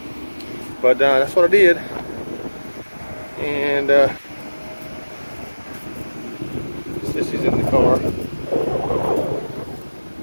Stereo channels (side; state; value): both; inverted; correlation -1.00